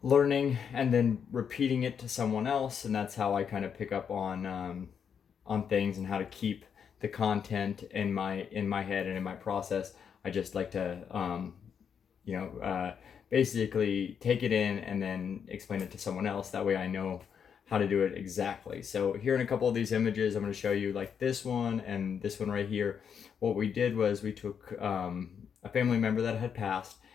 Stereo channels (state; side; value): quieter; right; 7.3 dB